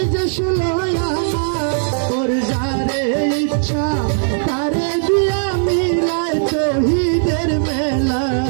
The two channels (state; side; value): silent; left; digital silence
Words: যে 16 আনা ওর যারে ইচ্ছা তারে দিয়া মিলায় শহীদের মেলা